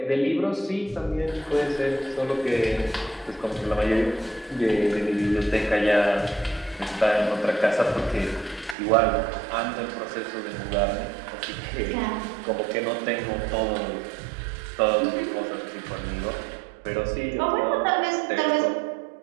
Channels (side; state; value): left; drops out; at 8.8 s